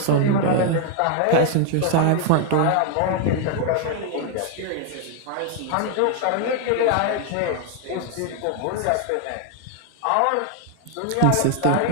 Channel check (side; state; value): both; different; correlation 0.01